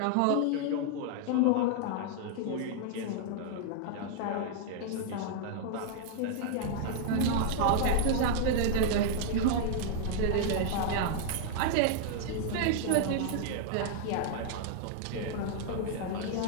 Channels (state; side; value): different; both; correlation -0.01